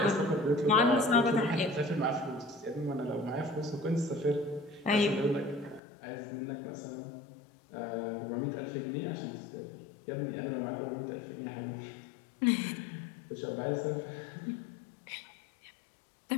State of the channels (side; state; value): right; drops out; at 5.8 s